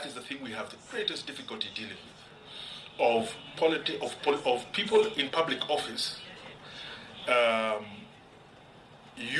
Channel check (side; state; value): both; identical; correlation 1.00